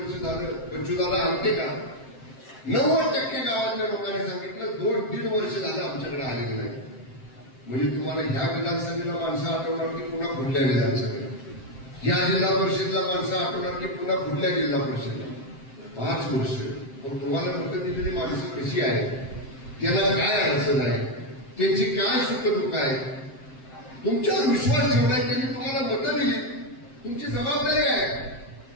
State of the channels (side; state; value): right; late; 7.6 ms